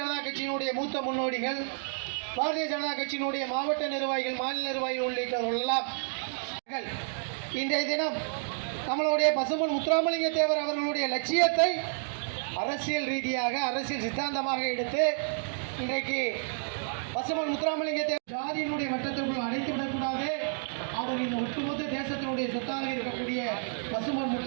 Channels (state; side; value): silent; left; digital silence